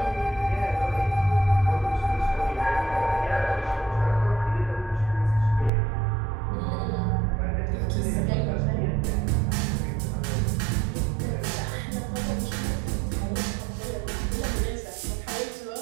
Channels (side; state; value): left; drops out; at 5.7 s